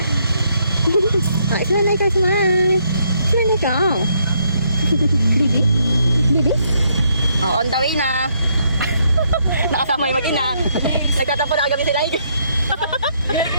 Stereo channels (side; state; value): both; inverted; correlation -0.73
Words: Oh, smile ikaw, smile. Smile ikaw. Bibi? Bibi? Oh, on the way na. Nakasama yung mag-ina. Nagtatapo na kami sila.